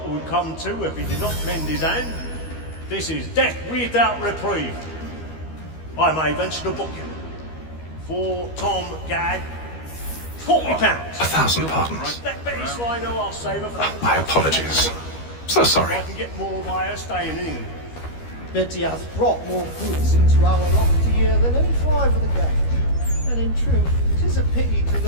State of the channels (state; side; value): late; right; 13 ms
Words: would come to if he did not mend his hand. This is death without reprieve. I may venture to book him. For Tom Gagg, £40. 1,000 pardons. That Betty so I know I'll save her from My apologies. So sorry. I can get more by her staying in England. Betty hath brought more goods into our lofty year than any five of the gang. And in truth, it is a pity to